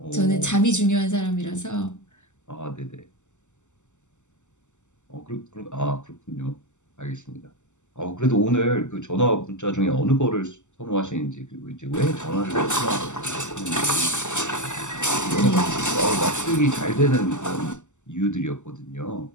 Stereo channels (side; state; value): right; late; 0.84 ms